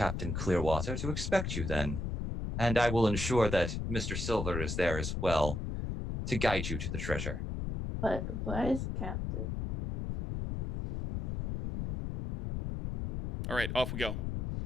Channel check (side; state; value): left; noise; rumble, 3 dB below the sound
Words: Clearwater to expect you then, and I will ensure that Mr. Silver is there as well to guide you to the treasure. But where's Captain? All right, off we go.